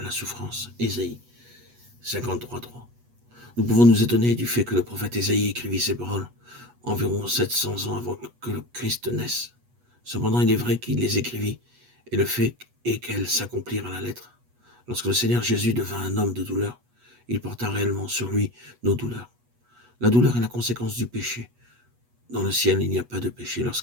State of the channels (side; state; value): left; late; 8.2 ms